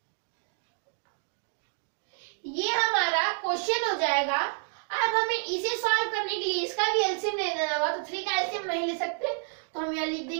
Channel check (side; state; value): left; silent; 57 dB below the other